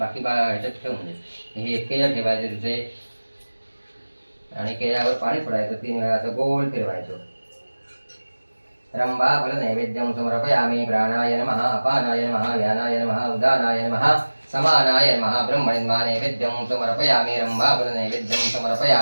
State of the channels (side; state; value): both; inverted; correlation -1.00